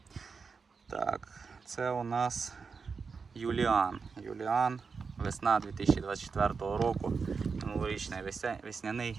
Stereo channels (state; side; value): quieter; left; 5.2 dB